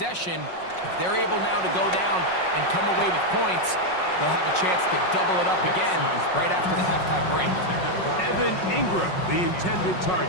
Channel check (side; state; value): right; late; 5.5 ms